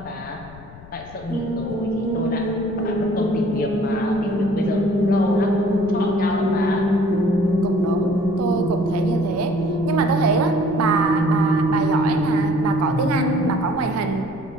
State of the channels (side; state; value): left; noise; rumble, 18 dB below the sound